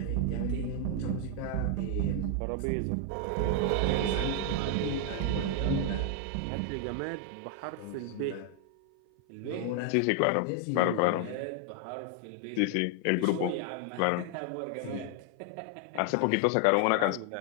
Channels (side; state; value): both; different; correlation 0.00